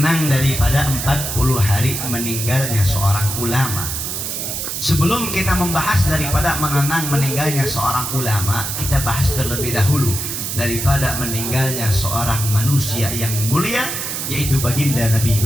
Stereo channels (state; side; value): noise; right; hiss, 4 dB below the sound